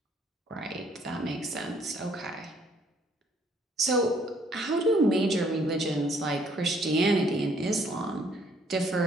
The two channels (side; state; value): both; normal; correlation 0.64